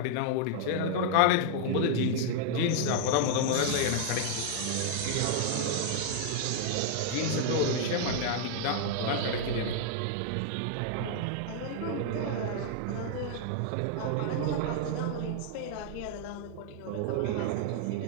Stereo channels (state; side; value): different; both; correlation 0.00